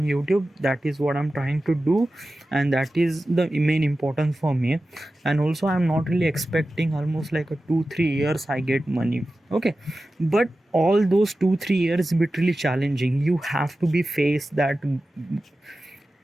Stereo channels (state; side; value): normal; both; correlation 0.94